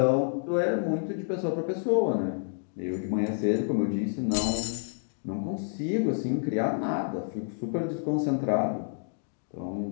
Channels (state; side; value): silent; right; digital silence